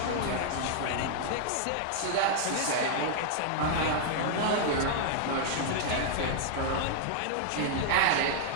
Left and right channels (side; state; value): both; different; correlation -0.01